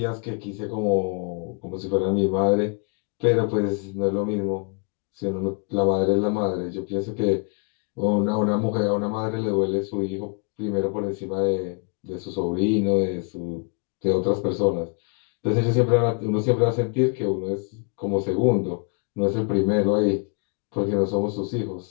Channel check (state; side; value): quieter; right; 35.9 dB